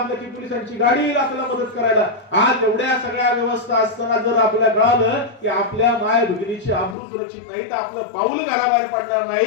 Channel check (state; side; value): drops out; right; at 7.0 s